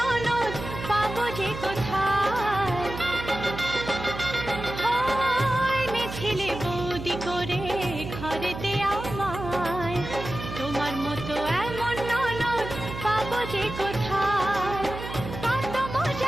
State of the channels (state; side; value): noise; right; hum, 9 dB below the sound